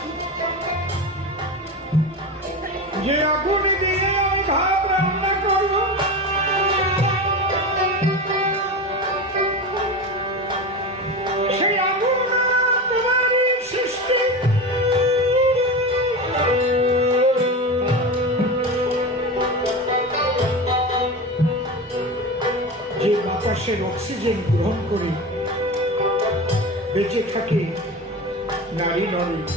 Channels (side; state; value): both; normal; correlation 0.25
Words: যে আগুন দিয়ে আমি ভাত রান্না করবো, সেই আগুন তোমারই সৃষ্টি। যে বাতাসের অক্সিজেন গ্রহণ করে বেঁচে থাকে নারী নরে,